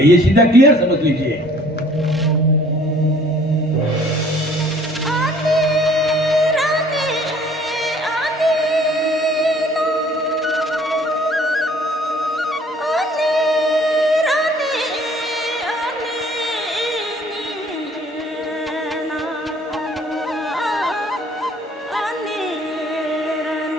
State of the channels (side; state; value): both; normal; correlation 0.56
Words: ये सीधा क्लियर समझ लीजिए।